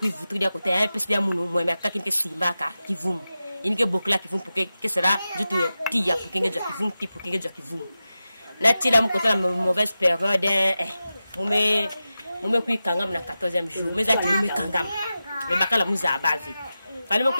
vutri dia côté un pesa dia munu mo me akakin ke simbaka ki vum inge bokla ki vum pour que sera du tout tia pour que nge ki vum ti pour que nge ki vum la tila mu kota na mauvaise période mume kuit kangam na 14e jour mais ati mume kangam le makala muza bavi fale mo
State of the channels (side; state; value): both; inverted; correlation -0.93